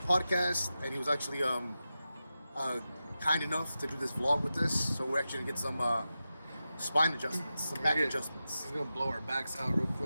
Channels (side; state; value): both; inverted; correlation -0.92